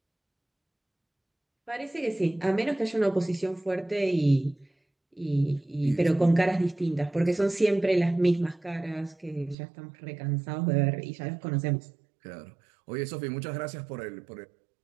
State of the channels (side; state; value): left; drops out; at 9.6 s